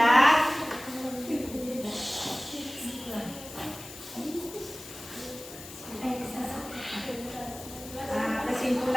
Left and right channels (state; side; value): noise; left; hiss, 14 dB below the sound